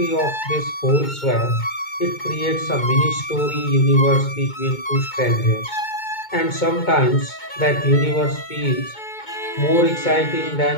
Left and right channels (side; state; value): right; late; 2.2 ms